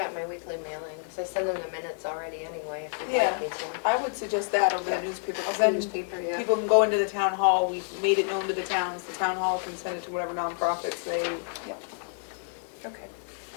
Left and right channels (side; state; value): right; silent; 59 dB below the other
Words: in my weekly mailing, because I send them the minutes already anyway, if you'd Yeah. like me to. I would suggest that over the newspaper, because The then newspaper, yeah. people can go into the town hall, we've made it known to the towns, the town hall can send it to whatever nonprofits they, Okay.